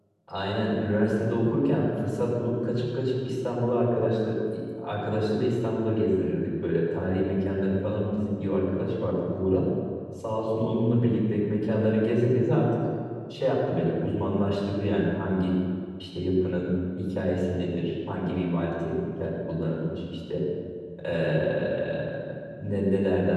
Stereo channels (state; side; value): identical; both; correlation 1.00